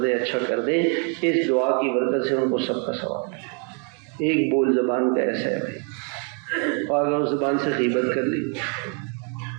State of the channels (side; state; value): left; quieter; 39.6 dB